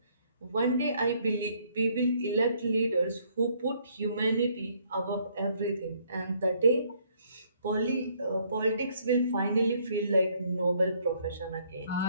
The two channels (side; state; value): both; inverted; correlation -0.66